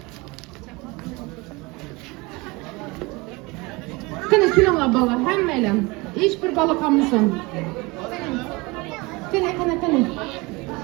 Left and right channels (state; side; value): quieter; left; 24.7 dB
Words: Qani kelinglar bolalar, hammalar. Hech bir bola qolmasin. Qani.